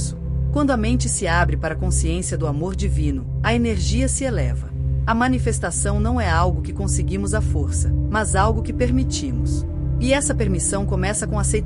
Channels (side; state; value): both; identical; correlation 1.00